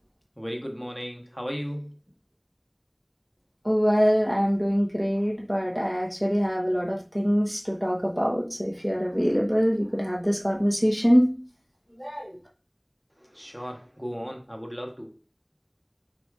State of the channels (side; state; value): both; identical; correlation 1.00